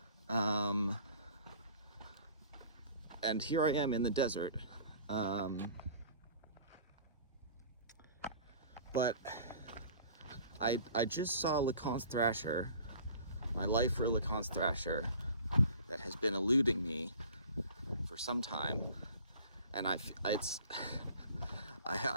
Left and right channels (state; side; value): inverted; both; correlation -0.46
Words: And here I am in the desert. But I just saw LeConte Thrasher, my lifer LeConte Thrasher, that has been eluding me for some time, and I